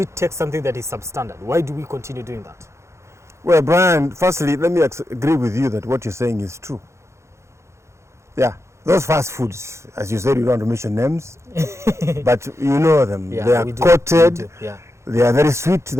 take something that is substandard? Why do we continue doing that? Well, Brian, firstly, let me agree with you that what you're saying is true. Yeah, those fast foods, as you said, you don't want to mention names, but you know them. They are coated, they are very sweet to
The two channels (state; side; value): late; left; 0.14 ms